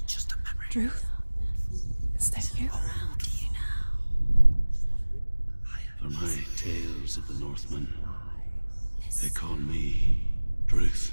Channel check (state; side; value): inverted; both; correlation -1.00